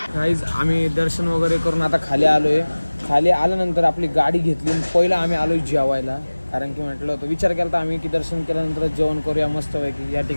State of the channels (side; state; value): both; inverted; correlation -1.00